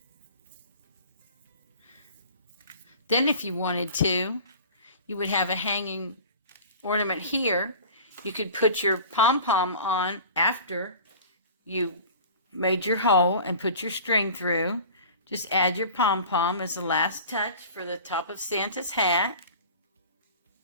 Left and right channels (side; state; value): both; inverted; correlation -0.41